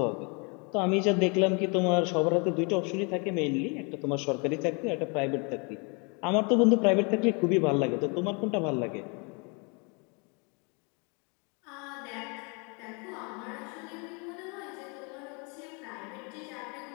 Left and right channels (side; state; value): right; quieter; 33.0 dB